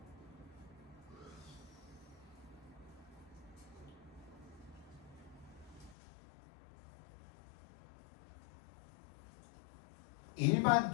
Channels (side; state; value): right; drops out; at 6.0 s